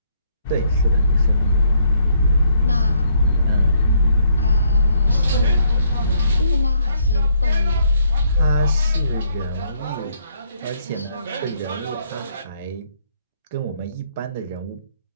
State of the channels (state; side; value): inverted; both; correlation -0.69